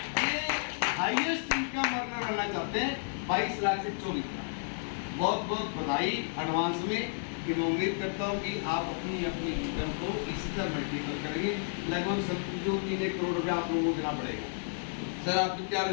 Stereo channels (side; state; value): right; silent; digital silence